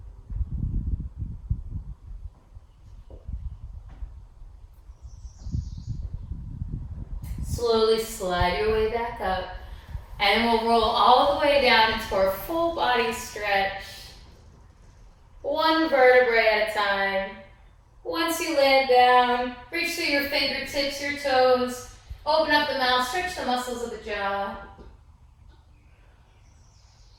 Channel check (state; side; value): identical; both; correlation 1.00